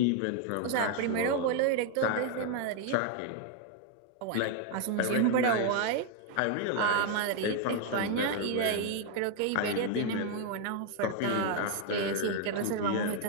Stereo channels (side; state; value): both; different; correlation 0.00